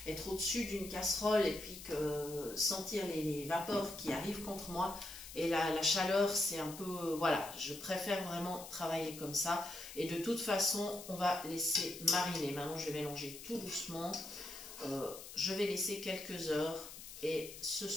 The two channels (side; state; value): left; noise; hiss, 13 dB below the sound